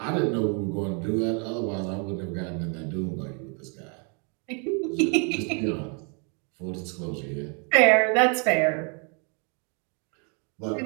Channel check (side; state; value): left; quieter; 37.3 dB